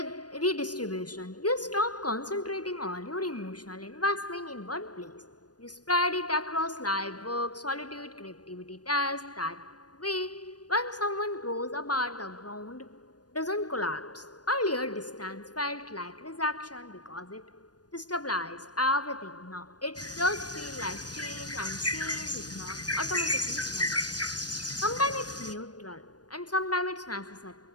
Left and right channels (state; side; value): late; right; 0.69 ms